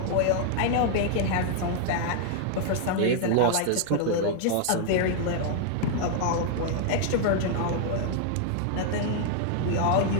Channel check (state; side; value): different; both; correlation 0.00